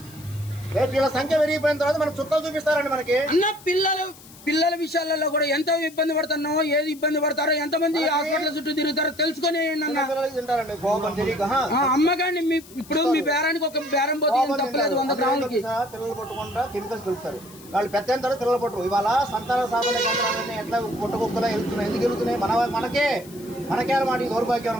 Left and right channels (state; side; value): noise; left; hiss, 21 dB below the sound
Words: వీళ్ళ సంఖ్య పెరిగిపోయిన తర్వాత మనకు చుక్కలు చూపిస్తారండి. మనకి అన్న పిల్లల విషయాలలో కూడా ఎంత ఇబ్బంది పడుతున్నావు, ఏది ఇబ్బంది పడతారో, ఎంతమంది హాస్పిటల్ చుట్టూ తిరుగుతారో తెలుసుకుని అమ్మగాని. ఇప్పుడు మీ బేరానికి ఒక బేరం పోతే తప్పలేదు 100 గ్రాములకి. పిల్లలు పట్టుకుంటా కెమికల్స్ కలుపుతారు. వాళ్ళు పెద్ద పిల్లలు పట్టరు. ఇవాళ సంతాన సాధన కేంద్రాలన్నీ ఎట్లా పుట్టకుక్కలా వెళ్తున్నాయి. ఎందుకు వెళ్తున్నాయి? మనకే అన్నమాట. దౌర్భాగ్యం